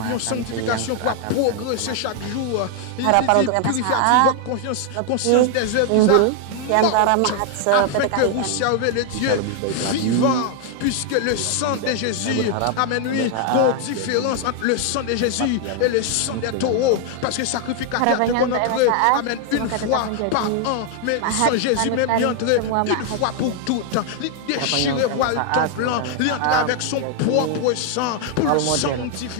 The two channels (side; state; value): both; different; correlation 0.00